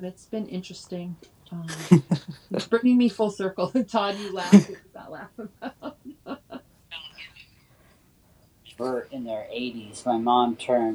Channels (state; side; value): identical; both; correlation 1.00